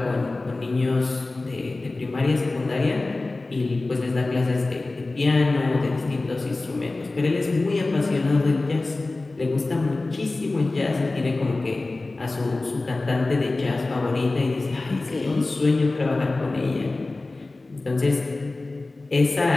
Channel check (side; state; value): right; quieter; 3.2 dB